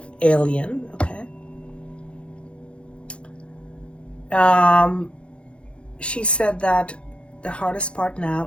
okay? She said that the hardest part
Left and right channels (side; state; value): right; late; 0.058 ms